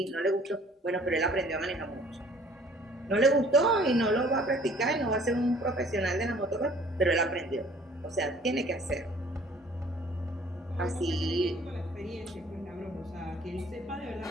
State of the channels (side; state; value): both; normal; correlation 0.54